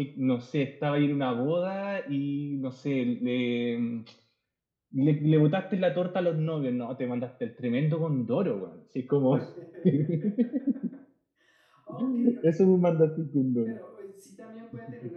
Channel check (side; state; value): both; identical; correlation 1.00